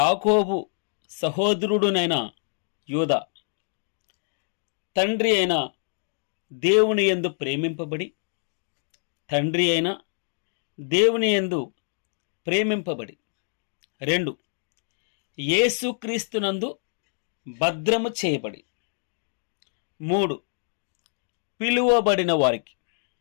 సహోదరుడునైన యూదా తండ్రి అయిన దేవుని యందు ప్రేమింపబడి దేవుని యందు ప్రేమింపబడి 2 యేసుక్రీస్తునందు భద్రము చేయబడి 3 పిలువబడిన వారికి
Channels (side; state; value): right; silent; digital silence